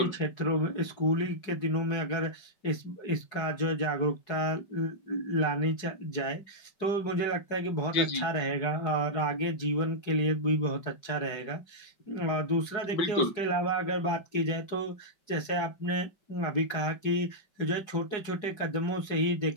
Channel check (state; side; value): late; right; 4.8 ms